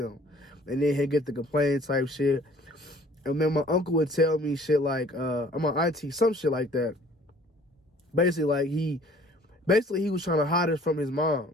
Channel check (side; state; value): both; normal; correlation 0.54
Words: And then he'd get the complaint type shit. And then my uncle would tell me shit like, my auntie, some shit like that. Basically, like he was trying to hide us from his